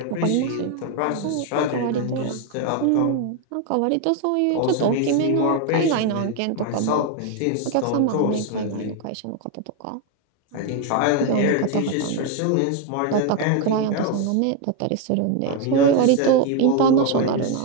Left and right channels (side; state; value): both; different; correlation 0.01